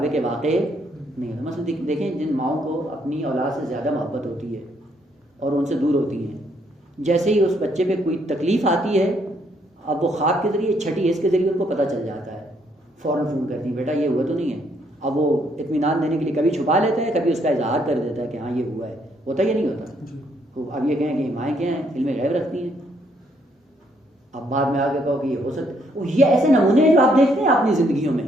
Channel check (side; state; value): both; normal; correlation 0.71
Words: واقع نہیں ہوتا. مثلا دیکھیں جن ماؤں کو اپنی اولاد سے زیادہ محبت ہوتی ہے اور ان سے دور ہوتی ہیں، جیسے ہی اس بچے پہ کوئی تکلیف آتی ہے اب وہ خواب کے ذریعے چھٹی حص کے ذریعے ان کو پتہ چل جاتا ہے، فوراً فون کرتی ہیں بیٹا یہ ہوا تو نہیں ہے. اب وہ اطمینان دینے کے لیے کبھی چھپا لیتا ہے، کبھی اس کا اظہار کر دیتا ہے کہ ہاں یہ ہوا ہے. ہوتا یا نہیں ہوتا؟ اب یہ کہیں کہ مائیں کیا ہیں؟ علم غیب رکھتی ہیں. اب بعد میں آگے کہو کہ یہ ہو سکتا، یہ ایسے نمونے ہیں جو آپ دیکھتے ہیں اپنی زندگیوں میں.